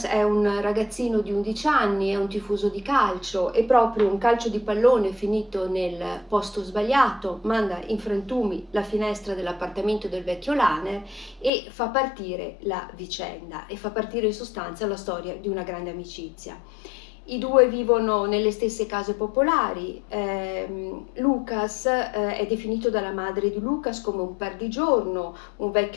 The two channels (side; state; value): right; drops out; at 11.5 s